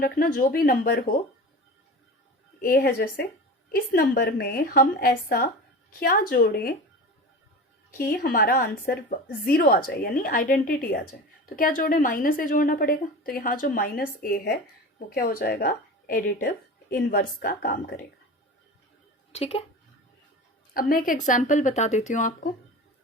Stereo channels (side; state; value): both; normal; correlation 0.32